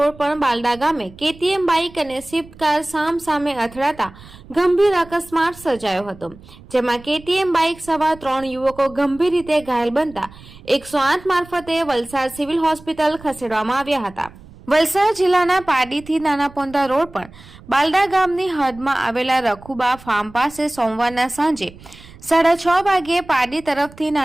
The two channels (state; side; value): noise; right; rumble, 21 dB below the sound